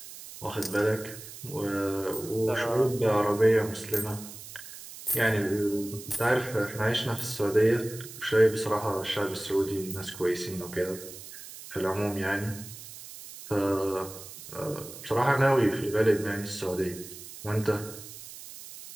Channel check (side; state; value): right; noise; hiss, 14 dB below the sound